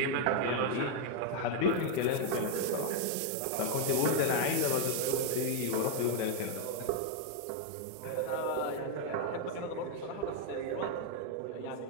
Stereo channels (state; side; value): different; both; correlation 0.00